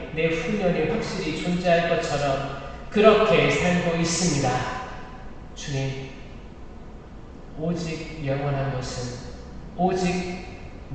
내후년이 확실히 존재할 것처럼 그렇게 살고 있습니다. 주님, 오직 영원한 것은, 오직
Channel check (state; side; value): identical; both; correlation 1.00